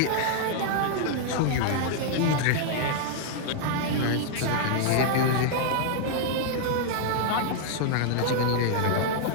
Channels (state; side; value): different; both; correlation -0.01